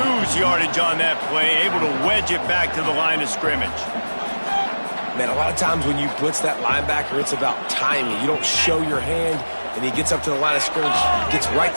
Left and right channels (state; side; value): inverted; both; correlation -1.00